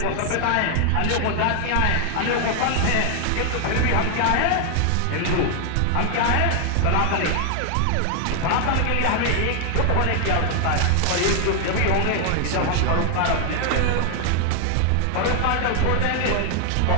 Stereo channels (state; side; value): different; both; correlation 0.00